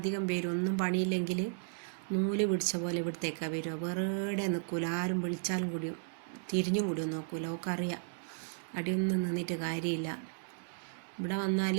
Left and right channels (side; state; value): left; silent; digital silence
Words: പേരും ഒന്നും പണിയില്ലെങ്കിൽ നൂല് പിടിച്ച പോലെ ഇവിടത്തേക്കാണ് വരിക. വെറുതെ നിൽക്കൂല, ആരും വിളിച്ചാലും കൂടിയും തിരിഞ്ഞും കൂടിയും നോക്കൂല. അവൾക്കറിയാം അടിയൊന്നും നിന്നിട്ട് കാര്യമില്ല. ഇവിടെ വന്നാൽ